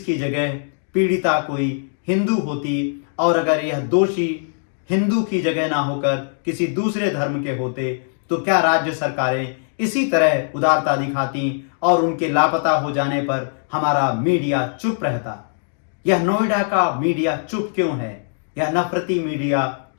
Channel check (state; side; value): silent; right; digital silence